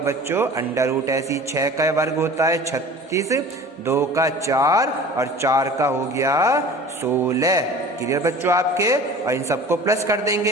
अंडर रूट। ऐसी 6 का वर्ग होता है 36, 2 का 4 और 4 का हो गया 16। क्लियर बच्चों आपके। और इन सबको प्लस कर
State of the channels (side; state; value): both; normal; correlation 0.42